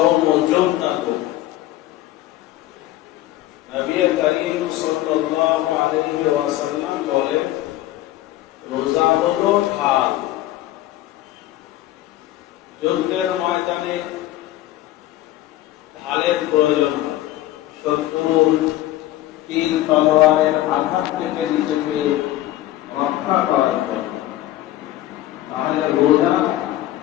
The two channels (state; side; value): quieter; right; 14.7 dB